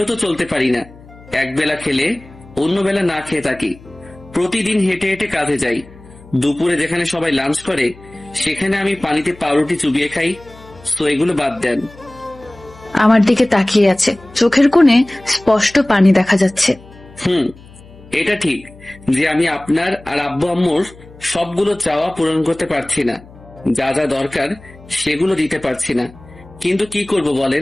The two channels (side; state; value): left; noise; hum, 22 dB below the sound